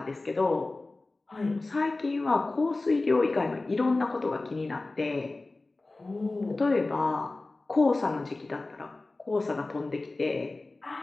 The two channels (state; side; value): quieter; right; 3.2 dB